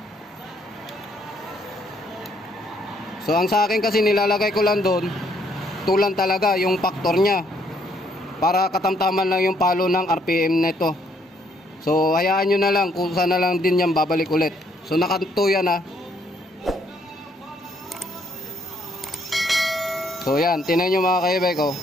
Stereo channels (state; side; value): normal; both; correlation 0.69